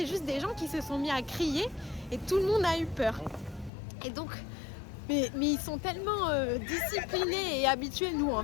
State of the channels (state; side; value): drops out; right; at 3.7 s